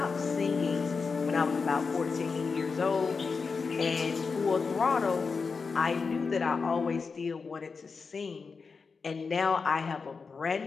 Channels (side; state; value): right; quieter; 4.9 dB